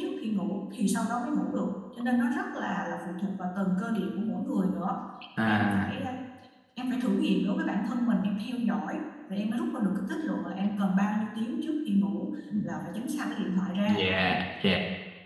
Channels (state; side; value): identical; both; correlation 1.00